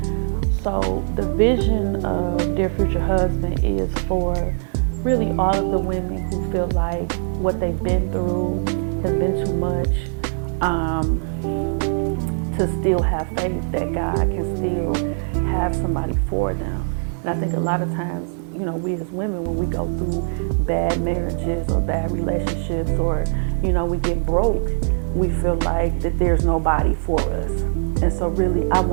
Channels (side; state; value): left; silent; 55 dB below the other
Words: So the vision of Dear Future Husband is for really all of the women who feel like what they've been through has been too much. To still have faith that God can still have somebody for them. And I think a lot of times, we as women, when we go through bad marriages or bad relationships, or, we get broke, we feel like that there's nobody for us. And so really, I